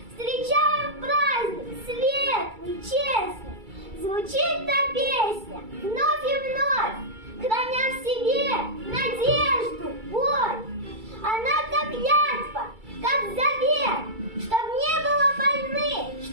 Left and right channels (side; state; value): left; late; 2.3 ms